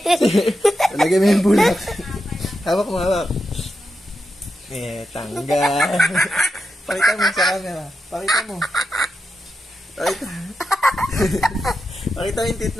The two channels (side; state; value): both; normal; correlation 0.87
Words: Talagay mo yung bulak. Hawak mo, hawak. Tanggal. Pakita mo sa camera. Pakita mo. Pakita mo yung tit